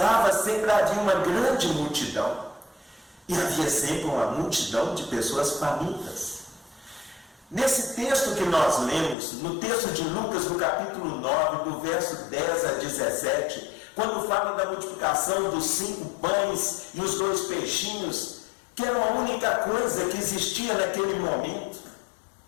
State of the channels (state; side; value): drops out; right; at 9.2 s